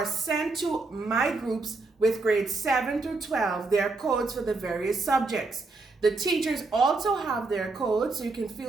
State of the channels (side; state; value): left; quieter; 3.6 dB